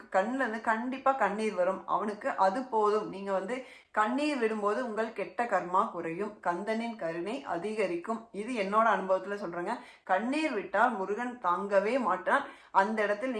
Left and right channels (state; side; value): identical; both; correlation 1.00